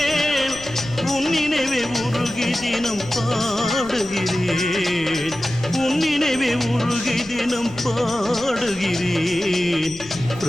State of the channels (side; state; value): left; noise; rumble, 19 dB below the sound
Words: உன் நினைவே உருகி தினம் பாடுகிறேன், உன் நினைவே உருகி தினம் பாடுகிறேன்.